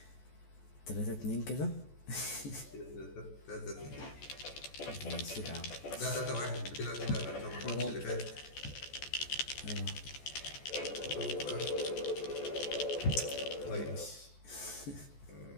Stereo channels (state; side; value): late; right; 14 ms